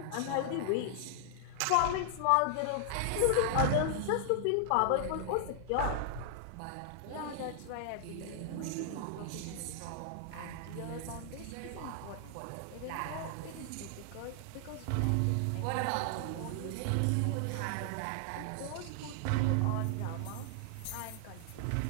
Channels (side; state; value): both; different; correlation 0.00